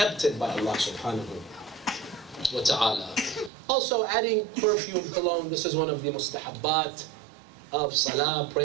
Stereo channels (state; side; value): drops out; left; at 3.5 s